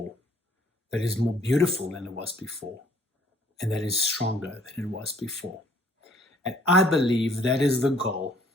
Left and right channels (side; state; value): both; normal; correlation 0.59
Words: that is more beautiful than it was before, and that is stronger than it was before. And I believe that is the goal